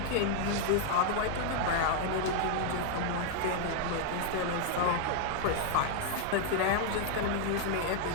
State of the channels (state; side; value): different; both; correlation -0.01